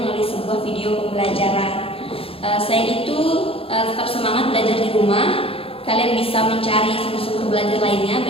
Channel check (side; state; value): right; late; 0.27 ms